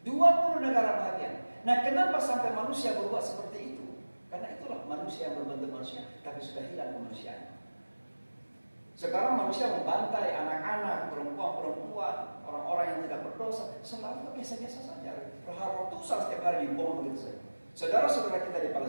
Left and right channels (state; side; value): inverted; both; correlation -1.00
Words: 20 negara bahagian. Nah, kenapa sampai manusia berbuat seperti itu? Karena itulah manusia yang berbentuk manusia, tapi sudah hilang kemanusiaan. Sekarang manusia membantai anak-anak, perempuan-perempuan, orang-orang yang tidak berdosa, selalu biasa-biasa saja. Ratusan setiap hari dibom begitu saja. Saudara-saudara kita di